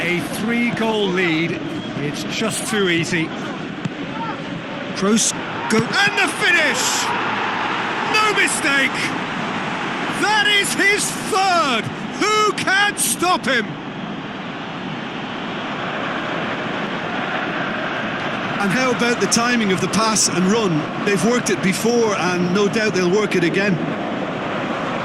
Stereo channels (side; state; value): both; identical; correlation 1.00